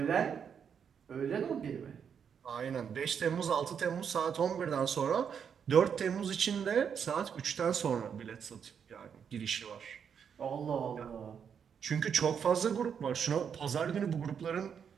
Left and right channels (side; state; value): left; quieter; 7.4 dB